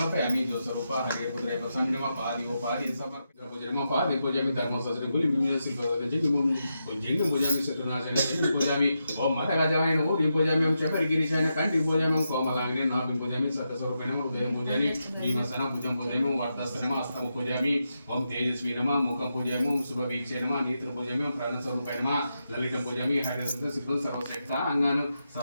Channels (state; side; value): inverted; both; correlation -0.86